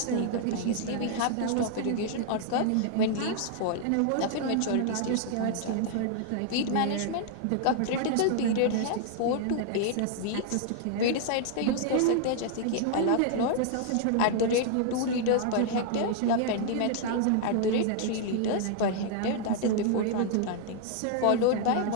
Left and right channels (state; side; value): different; both; correlation 0.00